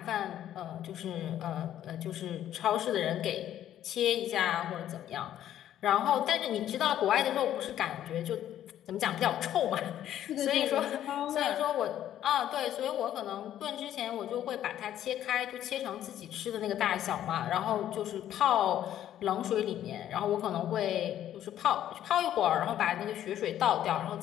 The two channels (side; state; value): right; quieter; 11.5 dB